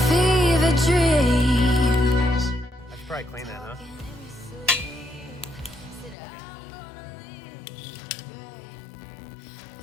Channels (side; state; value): right; drops out; at 6.2 s